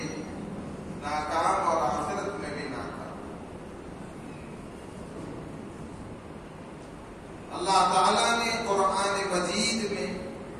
ناکام اور آخرت میں بھی ناکام. اللہ تعالیٰ نے قرآن مجید میں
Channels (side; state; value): both; identical; correlation 1.00